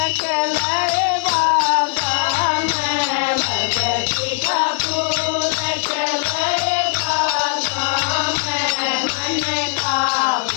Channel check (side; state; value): right; silent; digital silence